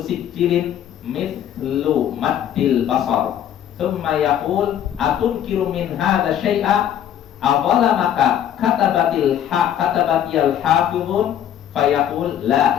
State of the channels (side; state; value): right; quieter; 10.3 dB